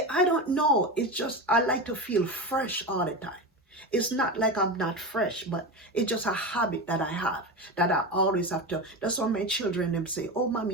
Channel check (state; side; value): normal; both; correlation 0.21